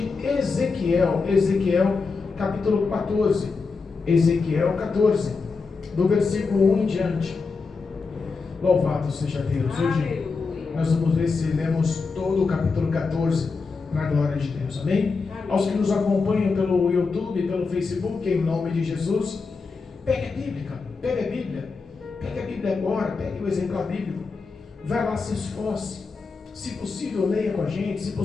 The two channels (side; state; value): right; quieter; 4.5 dB